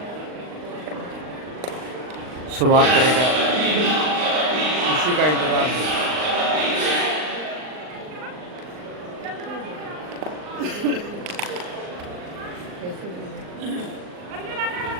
शुरुआत करेगा, उसी का इंतजार है।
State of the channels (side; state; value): left; late; 39 ms